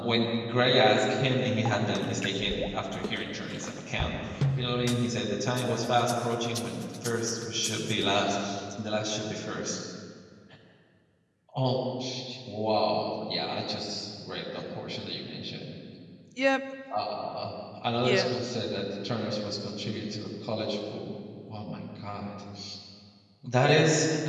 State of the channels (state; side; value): identical; both; correlation 1.00